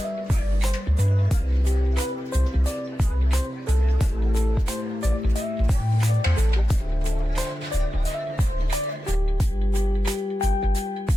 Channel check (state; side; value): normal; both; correlation 0.92